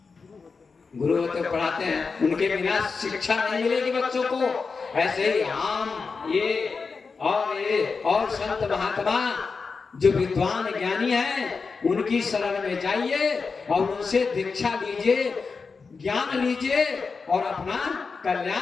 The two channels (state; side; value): quieter; right; 4.8 dB